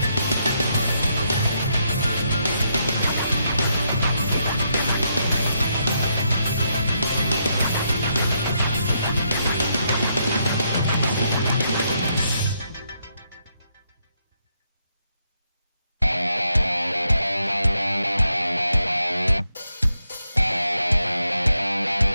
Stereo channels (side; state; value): both; inverted; correlation -0.79